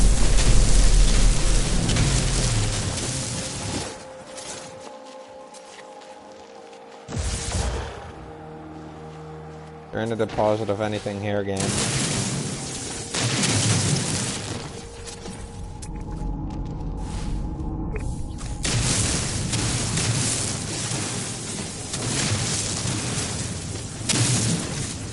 There ain't a deposit of anything here, game.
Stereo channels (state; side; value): identical; both; correlation 1.00